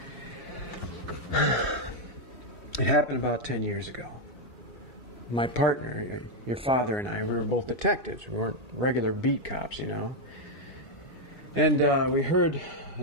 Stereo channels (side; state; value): both; normal; correlation 0.02